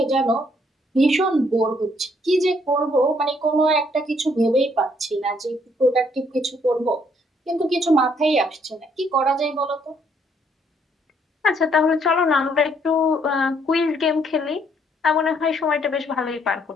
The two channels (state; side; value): normal; both; correlation 0.68